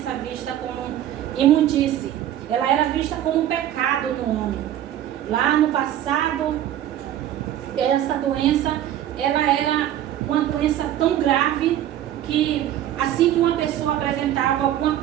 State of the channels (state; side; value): quieter; left; 11.8 dB